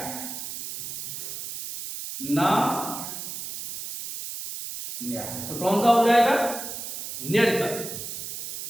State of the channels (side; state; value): right; noise; hiss, 7 dB below the sound